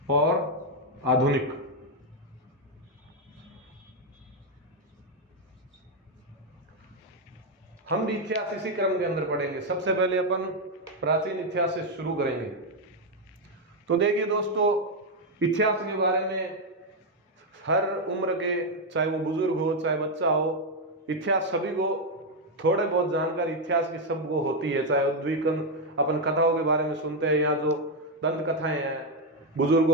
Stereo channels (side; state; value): both; normal; correlation 0.03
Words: और आधुनिक। हम भी इतिहास इसी क्रम के अंदर पढ़ेंगे। सबसे पहले अपन प्राचीन इतिहास से शुरू करेंगे। तो देखिए दोस्तों, इतिहास के बारे में हर उम्र के, चाहे वो बुजुर्ग हो चाहे बच्चा हो, इतिहास सभी को थोड़े बहुत जानकारी इतिहास की सबको होती है। चाहे उद्वीकन अपन कथाओं के बारे में सुनते हैं, या जो दंत कथाएं हैं